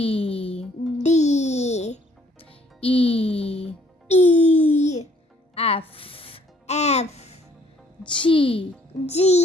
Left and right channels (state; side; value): normal; both; correlation 0.63